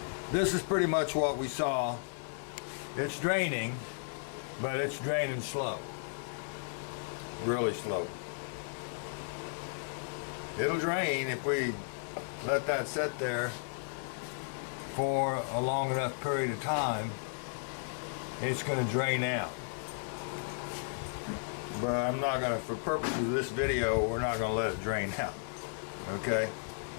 this is pretty much what we saw. It's draining, but it's draining slow. Really slow. It'll drain if we let that sit there for a long enough period of time. It's going to drain out. But I'm not going to, for purposes of this video, we're not going to let it drain out. Okay?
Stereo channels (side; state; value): right; silent; digital silence